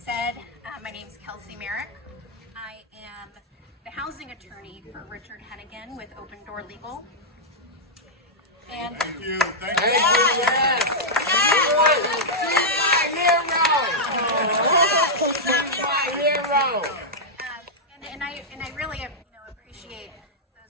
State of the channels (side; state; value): both; normal; correlation -0.07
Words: my name's Kelsey Merrick. I am the housing attorney for Richard Henegan with Open Door Legal. And Thank you. Thank you. And I really appreciate